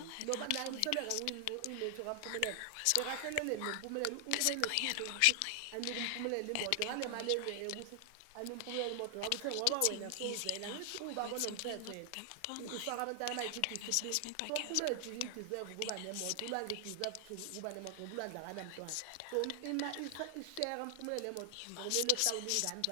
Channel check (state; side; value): different; both; correlation 0.00